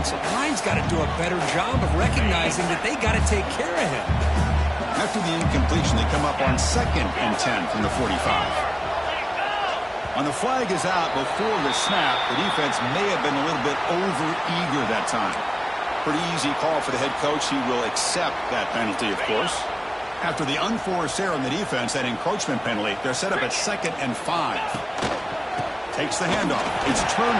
line's got to do a better job of recognizing that they got to take care of him. After the incompletion, they come up on 2nd and 10 from the 45. On the flag is out before the snap. The defense may have been a little bit over-eager that time. Pretty easy call for the head coach. He will accept that penalty, of course. After the unforced error on the defense, that encroachment penalty, they're set up at 2nd and 5. Takes the handoff. It's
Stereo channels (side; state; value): both; identical; correlation 1.00